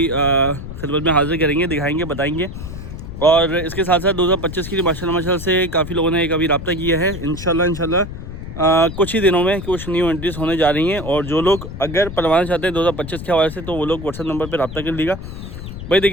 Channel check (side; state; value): left; noise; rumble, 10 dB below the sound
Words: खिदमत में हाज़िर करेंगे, दिखाएँगे, बताएँगे। और इसके साथ साथ 2025 की माशाल्लाह से काफ़ी लोगों ने एक अभी रब्ता किया है। इंशाल्लाह कुछ ही दिनों में कुछ न्यू एंट्रीज होने जा रही हैं। और जो लोग अगर पलवाना चाहते हैं 2025 के हवाले से तो वो लोग व्हाट्सएप नंबर पर रब्ता कर लीजिएगा। भाई